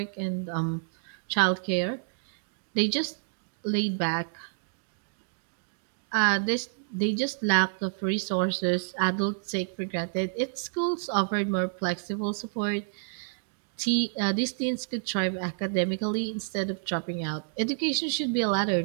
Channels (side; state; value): left; silent; digital silence